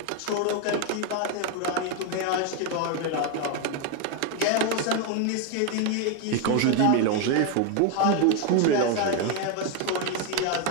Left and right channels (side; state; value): both; different; correlation 0.01